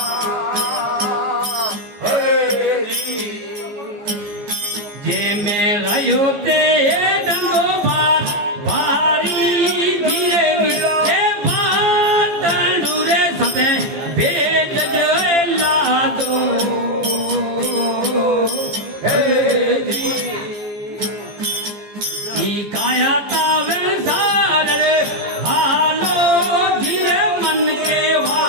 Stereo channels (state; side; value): late; left; 15 ms